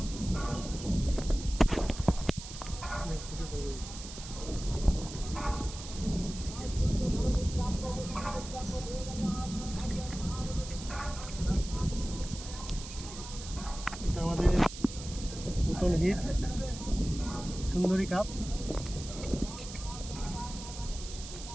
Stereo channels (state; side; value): noise; right; hiss, 12 dB below the sound